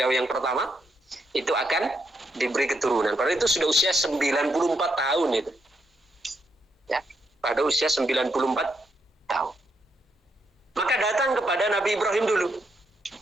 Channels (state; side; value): normal; both; correlation 0.79